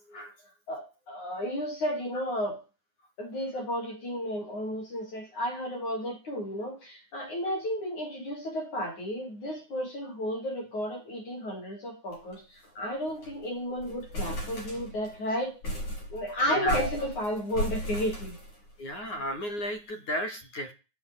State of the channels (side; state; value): right; late; 9.6 ms